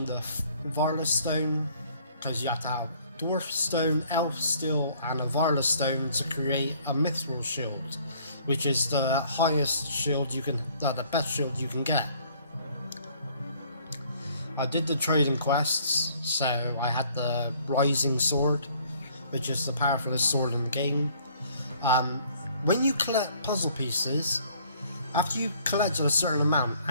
the Varla Stone, because you have to have Dwarf Stone, Elf Steel and a Varla Stone to create a Mithril Shield, which is the highest shield you can, the best shield you can get. I did the trading quests, so I had the Rising Sword, which is the powerfulest sword in the game. When you collect puzzle pieces, after you collect a certain amount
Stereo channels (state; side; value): inverted; both; correlation -0.60